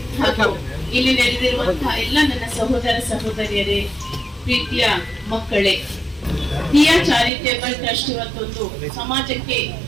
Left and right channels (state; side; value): drops out; left; at 7.3 s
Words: ಹಾಗೂ ಇಲ್ಲಿ ನೆರೆದಿರುವಂತಹ ಎಲ್ಲ ನನ್ನ ಸಹೋದರ ಸಹೋದರಿಯರೇ, ಪ್ರೀತಿಯ ಮಕ್ಕಳೇ, ದಿಯಾ ಚಾರಿಟೇಬಲ್ ಟ್ರಸ್ಟ್ ಇವತ್ತೊಂದು